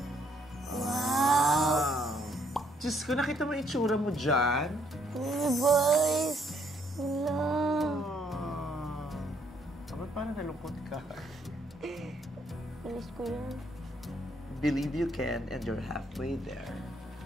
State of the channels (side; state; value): both; normal; correlation 0.69